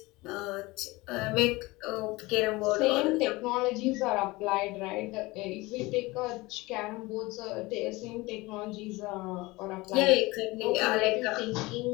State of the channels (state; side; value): quieter; right; 21.8 dB